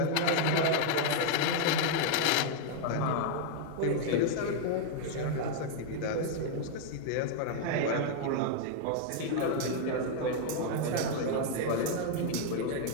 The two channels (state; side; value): different; both; correlation 0.00